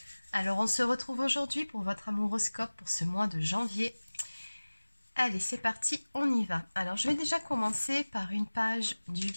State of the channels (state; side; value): inverted; both; correlation -1.00